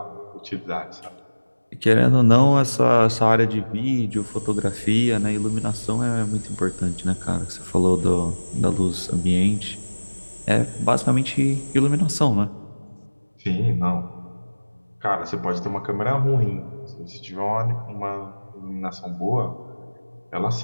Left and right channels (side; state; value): both; inverted; correlation -1.00